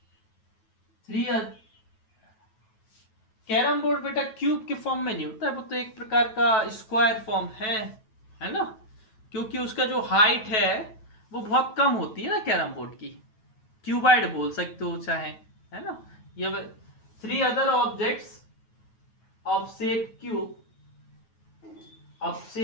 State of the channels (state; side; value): late; right; 9.2 ms